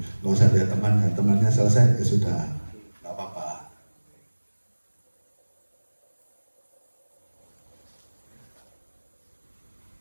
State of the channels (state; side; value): inverted; both; correlation -1.00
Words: nggak usah lihat temannya selesai ya sudah, nggak apa-apa.